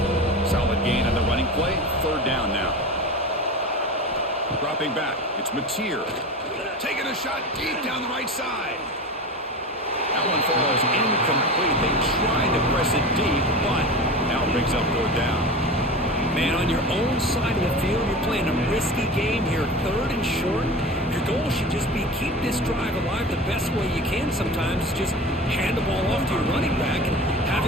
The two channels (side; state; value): both; normal; correlation 0.31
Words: Solid gain on the running play. Third down now. Dropping back. It's Mateer. Taking a shot deep down the right side. That one falls incomplete. They tried to press it deep, but now it brings up third down. Man, on your own side of the field, you're playing a risky game here, third and short. Your goal should just be keep this drive alive the best way you can sometimes. Just hand the ball off to your running back and